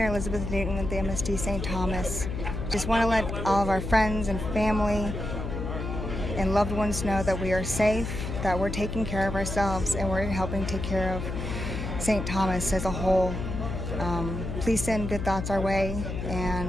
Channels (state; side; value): noise; left; hum, 5 dB below the sound